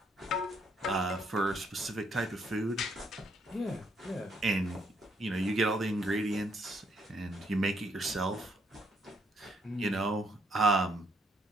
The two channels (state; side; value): normal; both; correlation 0.71